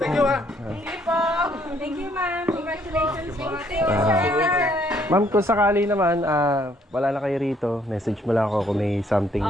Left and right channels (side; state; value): both; normal; correlation 0.66